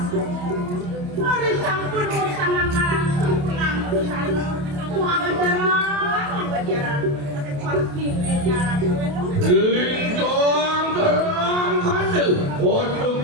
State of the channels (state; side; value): late; left; 28 ms